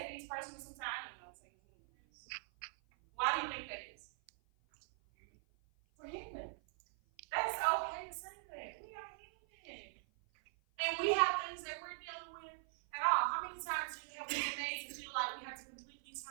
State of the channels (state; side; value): silent; left; 50 dB below the other